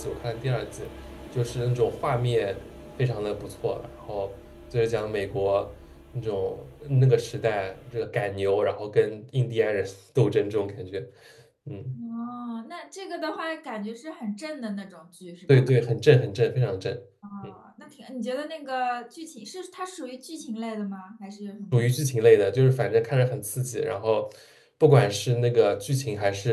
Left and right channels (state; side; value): identical; both; correlation 1.00